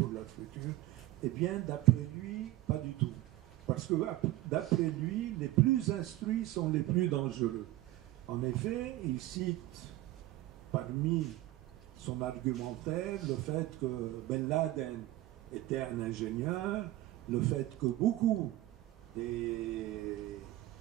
leur futur. Eh bien, d'après lui, pas du tout. Parce que d'après lui, les plus instruits sont les plus dangereux. En effet, il cite parmi son argumentaire le fait que Ben Laden était un ingénieur, le fait que beaucoup des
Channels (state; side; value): quieter; left; 16.4 dB